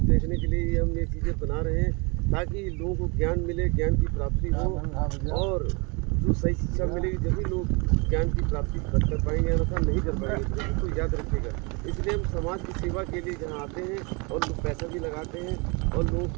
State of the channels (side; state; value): left; quieter; 30.2 dB